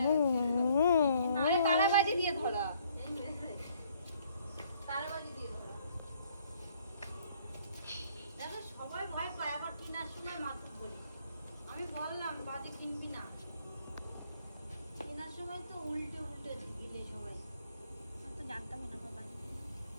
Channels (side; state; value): both; inverted; correlation -0.63